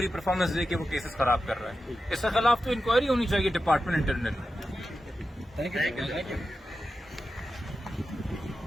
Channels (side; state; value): both; normal; correlation 0.91